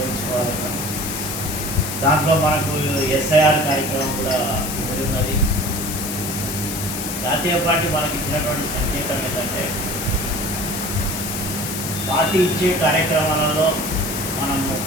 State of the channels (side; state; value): left; noise; hiss, 5 dB below the sound